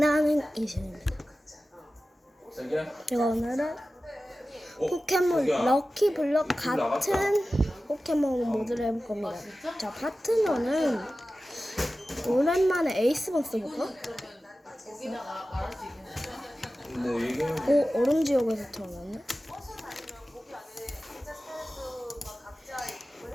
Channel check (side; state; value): both; normal; correlation 0.95